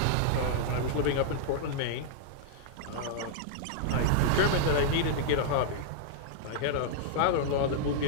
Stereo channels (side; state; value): both; different; correlation -0.01